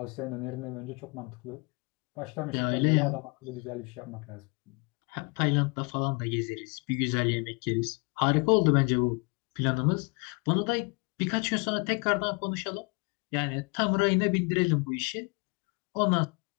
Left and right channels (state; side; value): quieter; right; 32.2 dB